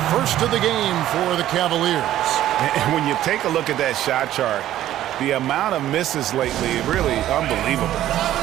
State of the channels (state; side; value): quieter; left; 13.0 dB